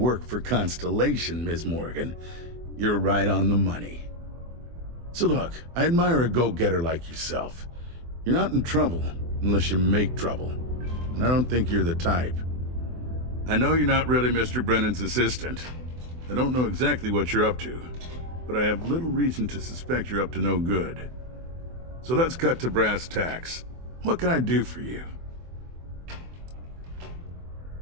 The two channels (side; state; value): left; late; 24 ms